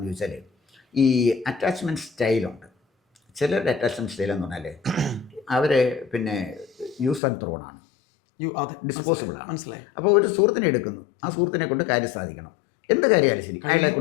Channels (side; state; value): right; drops out; at 7.2 s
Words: ചോദിച്ചാൽ, ഈ അറ്റാച്ച്മെൻറ്റ് സ്റ്റൈലുണ്ട്. ചിലരുടെ അറ്റാച്ച്മെൻറ്റ് സ്റ്റൈൽ എന്ന് പറഞ്ഞാൽ അവർ പിന്നെ യൂസ് ആൻഡ് ത്രോണാണ്, ഡിസ്പോസിബിൾ ആണ്. മനസ്സിലായി. അപ്പോൾ ഒരു സുഹൃത്തിനെ എടുക്കുന്നു, ആ സുഹൃത്തിനെ കൊണ്ട് കാര്യം സാധിക്കണം, എന്ത് കാര്യമായാലും ശരി, അയാളെ